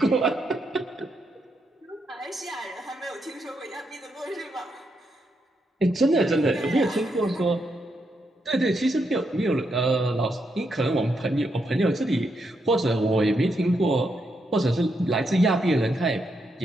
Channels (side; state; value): both; normal; correlation 0.81